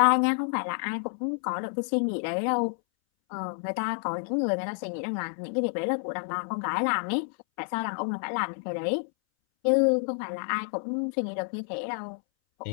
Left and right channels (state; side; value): silent; right; 59 dB below the other